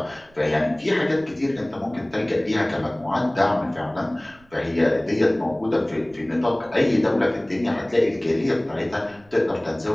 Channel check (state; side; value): noise; right; rumble, 28 dB below the sound